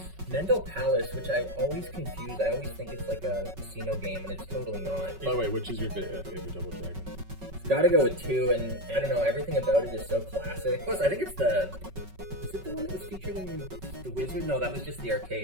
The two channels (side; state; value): left; late; 5.3 ms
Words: Mendel Palace, which I always confuse. I always think it's like a casino game, and it's totally not. By the way, which is your favorite Double Dragon? It's gotta go with 2, and I don't know, everything about it is so classic. Plus, I think it's is it the one that was featured in the Wizard? No, that was just the